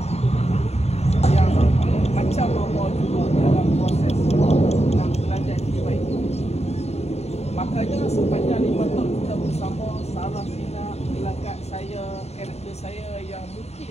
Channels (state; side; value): late; right; 0.31 ms